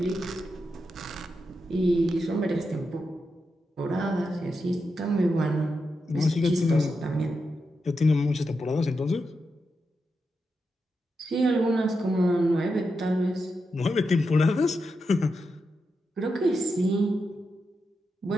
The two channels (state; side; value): normal; both; correlation 0.87